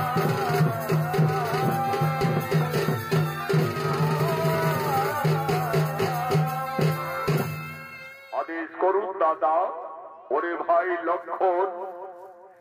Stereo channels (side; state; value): both; identical; correlation 1.00